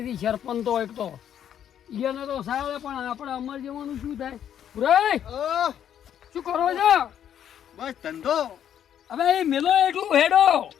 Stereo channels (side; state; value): right; quieter; 9.8 dB